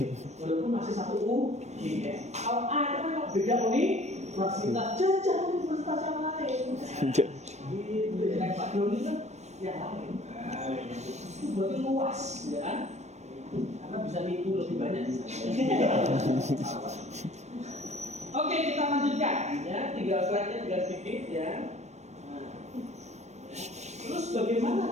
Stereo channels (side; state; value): left; late; 0.32 ms